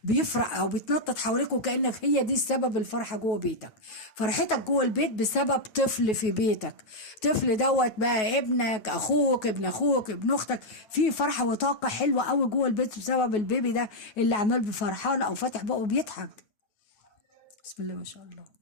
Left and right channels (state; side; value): late; right; 9.3 ms